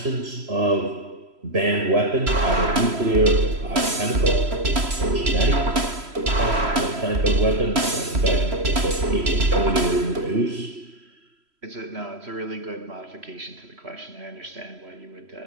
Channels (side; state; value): left; late; 3.0 ms